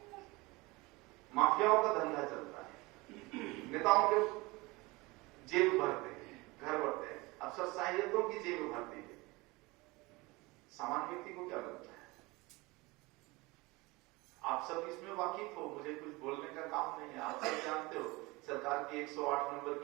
माफियाओं का धंधा चलता है, नेताओं के जेब भरते हैं, घर भरते हैं, अफसरशाहियतों की जेब भरती है। सामान्य व्यक्ति को क्या लगता है? आप सब इसमें वाकिफ हो, मुझे कुछ बोलने का काम नहीं है। आप सब जानते हो सरकार की 108 नंबर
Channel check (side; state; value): left; quieter; 23.3 dB